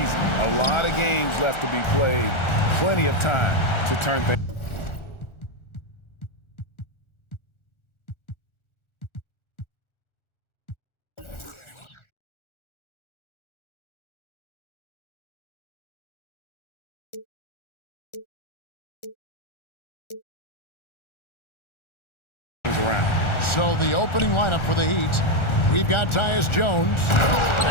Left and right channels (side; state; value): right; late; 1.4 ms